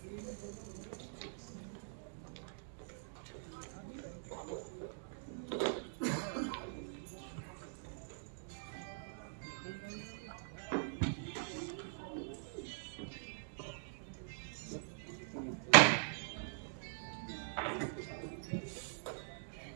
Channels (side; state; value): left; silent; digital silence